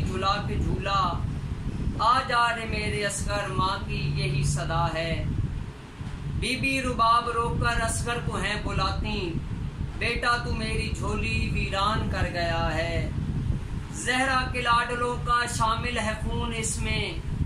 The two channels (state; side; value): identical; both; correlation 1.00